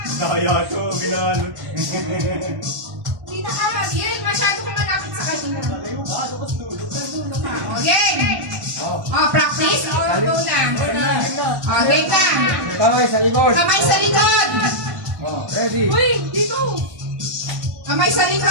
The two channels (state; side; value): late; left; 1.1 ms